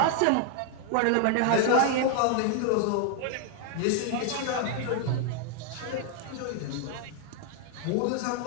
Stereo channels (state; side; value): different; both; correlation 0.00